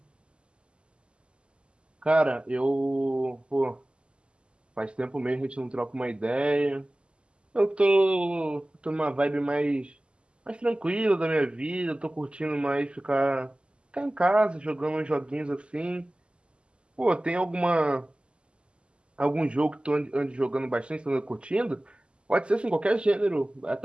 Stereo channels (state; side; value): late; left; 0.051 ms